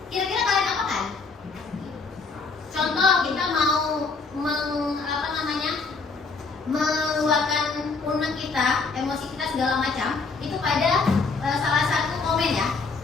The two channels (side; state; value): right; quieter; 4.3 dB